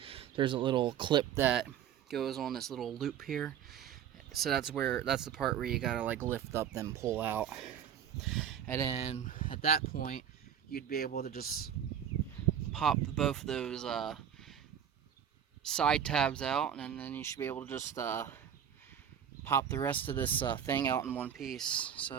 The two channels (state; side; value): quieter; left; 9.1 dB